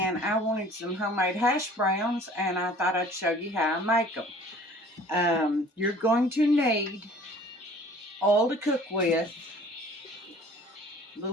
I wanted some homemade hash browns, and I thought I'd show you how I make them. You're going to need oil to cook with, a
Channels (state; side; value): normal; both; correlation 0.50